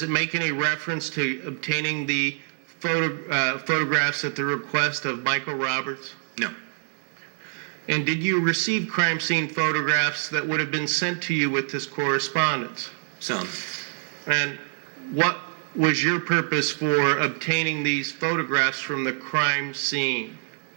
it make any reference to obtaining the photographs at the request of Michael Roberts? No. And did you receive crime scene photographs that would have been sent to you with this correspondence? Some. And what was your purpose for obtaining these photographs from the crime scene?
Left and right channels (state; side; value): silent; left; 60 dB below the other